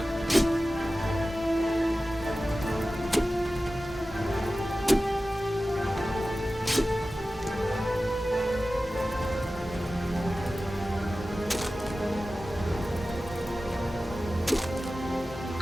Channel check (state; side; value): normal; both; correlation 0.95